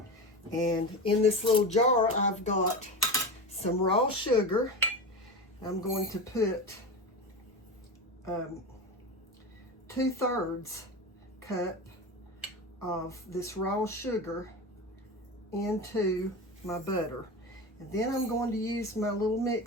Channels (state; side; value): normal; both; correlation 0.24